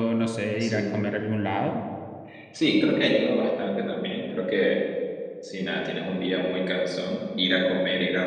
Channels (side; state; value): both; identical; correlation 1.00